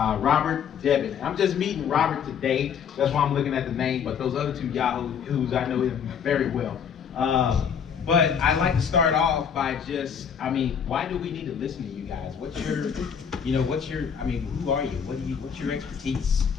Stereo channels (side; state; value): right; quieter; 7.5 dB